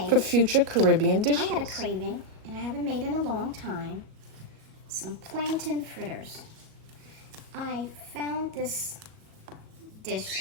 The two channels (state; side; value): late; left; 37 ms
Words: for future Caribbean dishes. I had a craving, and I haven't made in a long time, some plantain fritters. I found this dish